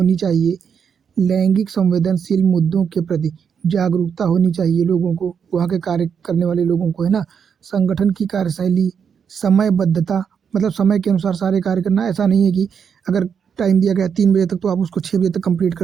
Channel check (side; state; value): left; quieter; 7.1 dB